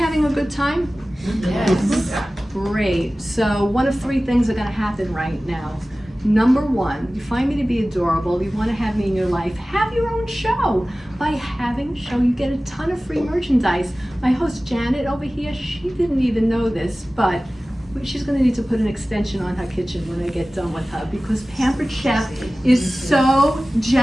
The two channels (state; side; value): normal; both; correlation 0.97